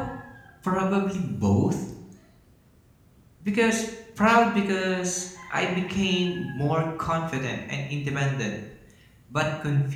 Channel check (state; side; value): identical; both; correlation 1.00